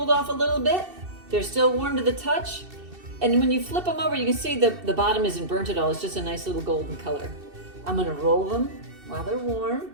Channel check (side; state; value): left; late; 2.7 ms